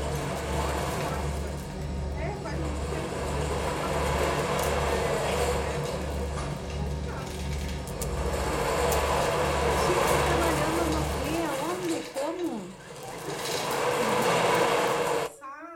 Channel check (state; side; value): identical; both; correlation 1.00